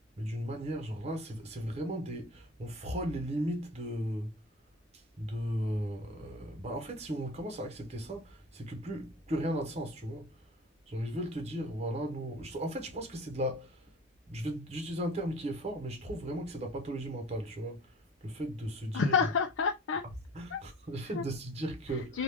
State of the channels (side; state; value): both; normal; correlation 0.42